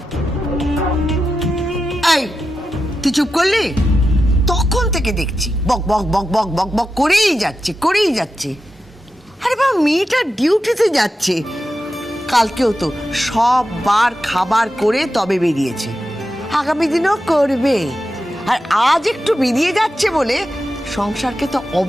এই তুই চুপ করলি? তখন থেকে দেখছি বক বক বক বক বক বক করেই যাচ্ছে। আরে বাবা, মেয়েটা ডিউটিতে যাচ্ছে, কালকেও তো সব বার খাবার করে তবে বেরিয়েছে, আগামী দিনেও করবে। আর আজ একটু বেরিয়ে যাচ্ছে বলে সংসারকে তো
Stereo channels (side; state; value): both; normal; correlation 0.90